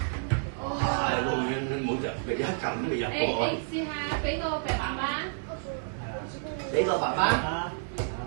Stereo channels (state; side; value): silent; left; 58 dB below the other